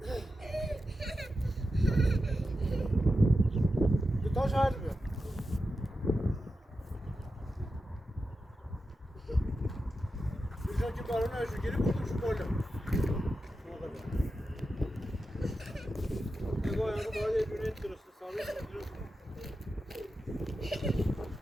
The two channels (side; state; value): both; normal; correlation 0.90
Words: دوتا شاید بیا بیشتر که بارون هشو گیری بردم شو بالا نگاه باید یه دونه درست ثابت